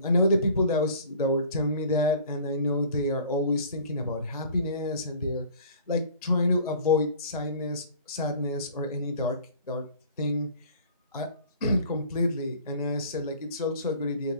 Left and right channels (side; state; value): both; inverted; correlation -0.47